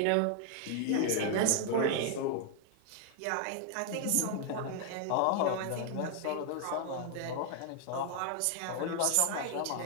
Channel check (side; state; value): both; different; correlation 0.00